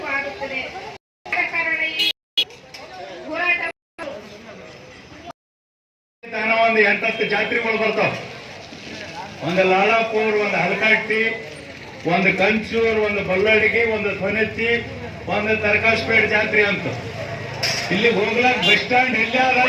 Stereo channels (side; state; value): both; identical; correlation 1.00